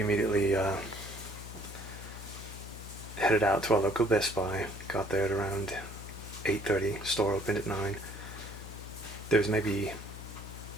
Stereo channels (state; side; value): noise; left; hum, 12 dB below the sound